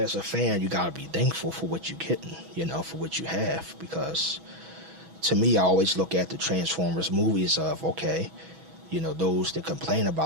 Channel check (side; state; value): left; late; 6.1 ms